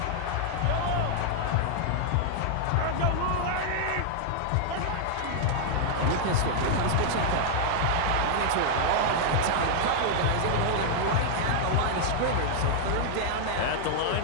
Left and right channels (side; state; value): both; different; correlation -0.01